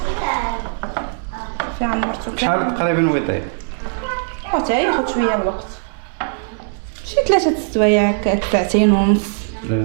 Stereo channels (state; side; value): silent; left; digital silence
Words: في عمرتو شحال تقريبا ويطيب؟ حتى ياخذ شويه الوقت، شي 3 سوايع هكا، 2 ونص.